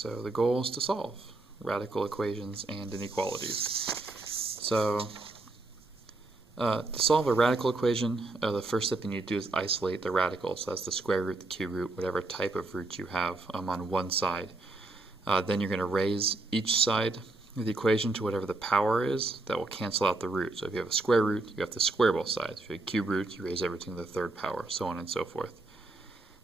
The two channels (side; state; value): left; quieter; 3.1 dB